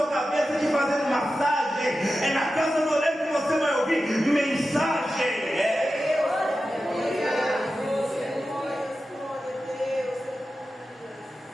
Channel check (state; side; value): normal; both; correlation 0.92